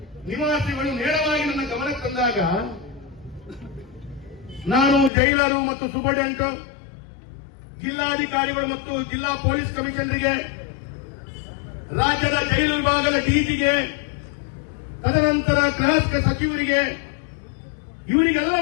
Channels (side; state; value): right; drops out; at 5.1 s